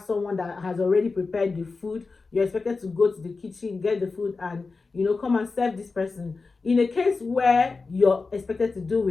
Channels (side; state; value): right; quieter; 4.1 dB